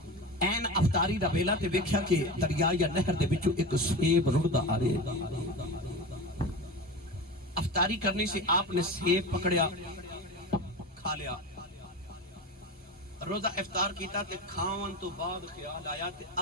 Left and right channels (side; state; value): both; normal; correlation 0.27